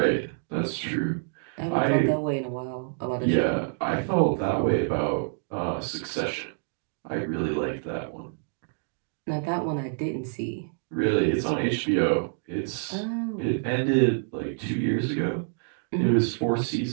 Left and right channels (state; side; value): silent; left; digital silence